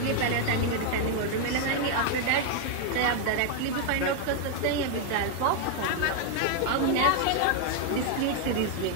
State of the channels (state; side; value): different; both; correlation 0.00